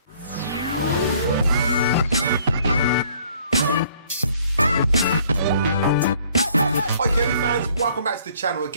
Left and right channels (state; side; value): inverted; both; correlation -0.60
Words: Hi Kirby fans, welcome back to the channel.